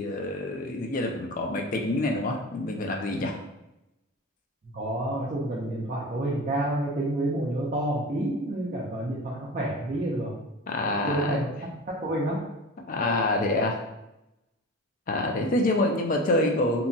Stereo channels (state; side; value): normal; both; correlation 0.32